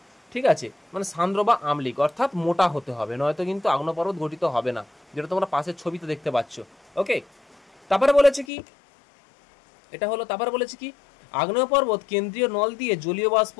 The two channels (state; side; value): drops out; right; at 8.5 s